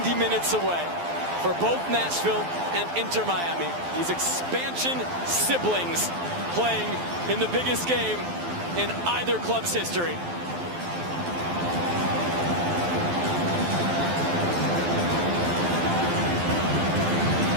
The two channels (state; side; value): late; left; 12 ms